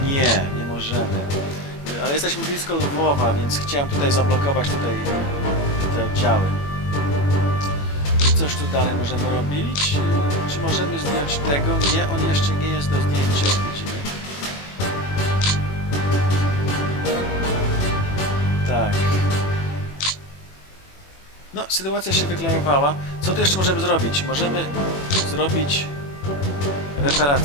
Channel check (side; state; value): right; late; 21 ms